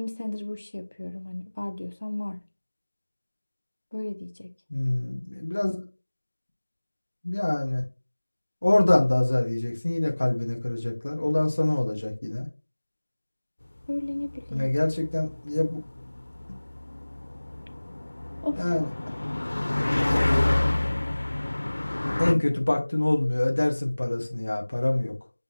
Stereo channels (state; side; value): inverted; both; correlation -1.00